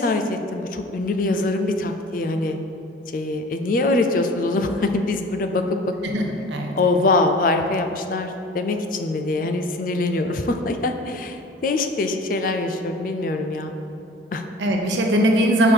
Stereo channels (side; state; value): both; normal; correlation 0.43